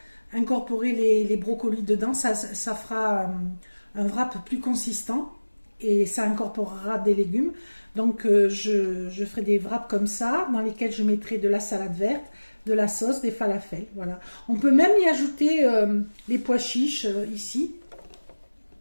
incorporer les brocolis dedans, ça fera un wrap plus consistant et ça incorporera des légumes. Donc je ferai des wraps comme ça, dans lesquels je mettrai de la salade verte, de la sauce, des falafels. Voilà. On peut même y ajouter les pois chiches ici.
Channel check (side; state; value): both; inverted; correlation -1.00